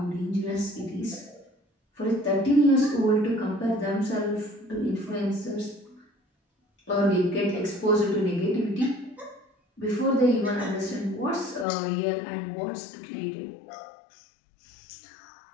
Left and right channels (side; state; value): right; drops out; at 11.7 s